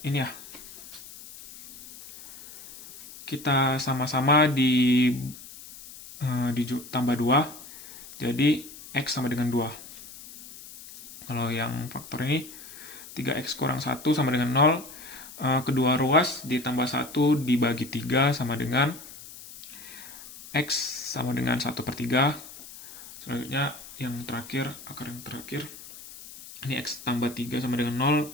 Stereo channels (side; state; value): left; noise; hiss, 16 dB below the sound